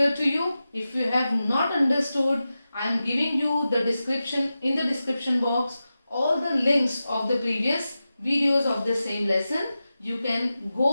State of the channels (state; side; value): inverted; both; correlation -0.93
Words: to you. If you have not understood, I am giving you the description, in the description box, all the links of the previous videos of the same lesson. You can